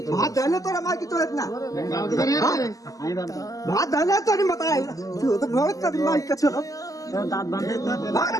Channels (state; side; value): late; right; 0.17 ms